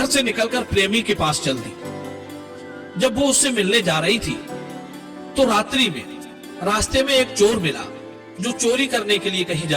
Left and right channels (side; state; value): both; identical; correlation 1.00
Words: से निकलकर प्रेमी के पास चल दी। जब वो उससे मिलने जा रही थी तो रात्रि में रास्ते में एक चोर मिला जो चोरी करने के लिए कहीं